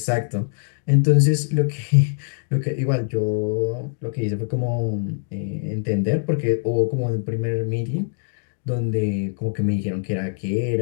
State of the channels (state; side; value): silent; right; digital silence